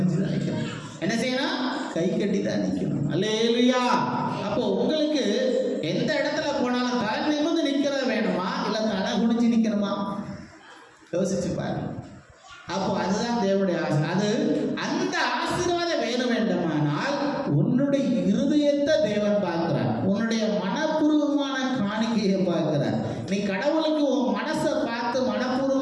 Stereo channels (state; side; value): identical; both; correlation 1.00